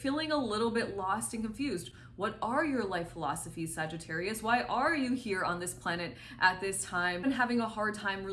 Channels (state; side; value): identical; both; correlation 1.00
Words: a little bit lost and confused. What are your life philosophies, Sagittarius? Why are you here on this planet at this time? And having a hard time